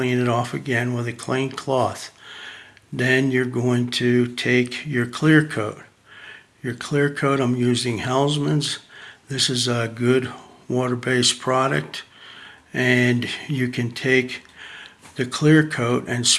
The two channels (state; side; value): identical; both; correlation 1.00